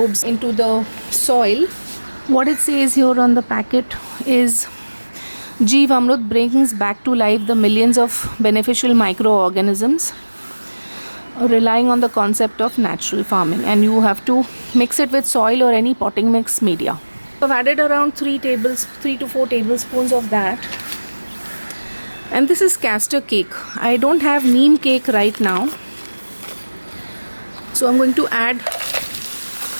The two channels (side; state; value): both; inverted; correlation -1.00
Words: into the soil. What it says here on the packet is Jeevamrut brings back to life the millions of beneficial microorganisms, relying on the concept of natural farming, and you have to mix it with soil or any potting mix media. I've added around 3 to 4 tablespoons of that. And this is castor cake. I don't have neem cake right now, so I'm going to add,